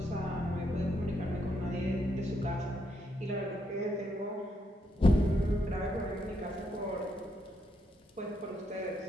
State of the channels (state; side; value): normal; both; correlation 0.77